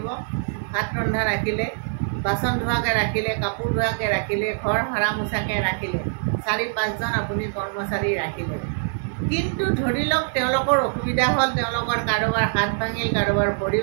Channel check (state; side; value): silent; left; digital silence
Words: ভাত ৰন্ধা ৰাখিলে, বাচন ধোৱাকৈ ৰাখিলে, কাপোৰ ধোৱাকৈ ৰাখিলে, ঘৰ সৰা মোচাকৈ ৰাখিলে, 4-5জন আপুনি কৰ্মচাৰী ৰাখিলে। কিন্তু ধৰি লওক তেওঁলোকৰ অসুবিধা হ'ল, তেওঁলোকৰ কাৰোবাৰ হাত ভাঙিল, কাৰোবাৰ ভৰি